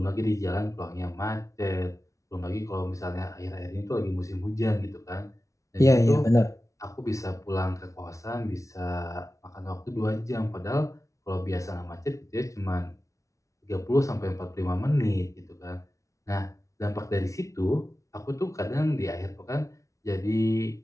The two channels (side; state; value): right; late; 0.15 ms